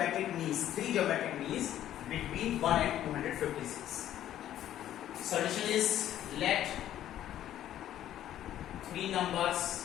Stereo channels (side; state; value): right; quieter; 11.9 dB